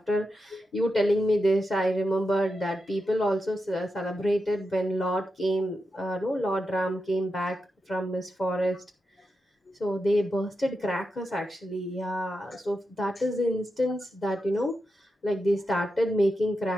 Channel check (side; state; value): both; normal; correlation 0.88